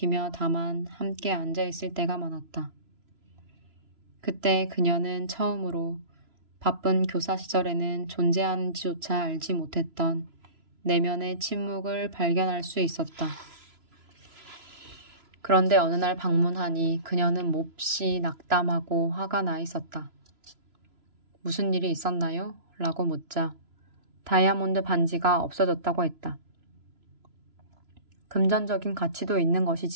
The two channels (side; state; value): left; late; 3.0 ms